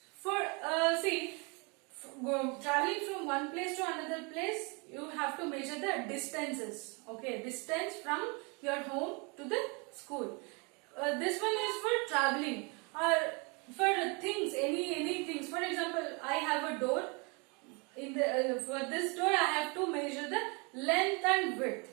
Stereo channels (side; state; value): left; quieter; 31.3 dB